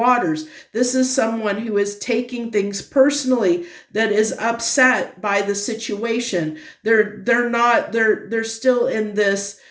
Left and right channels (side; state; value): both; identical; correlation 1.00